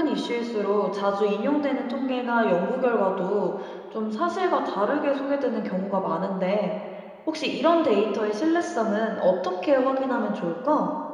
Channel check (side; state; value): both; identical; correlation 1.00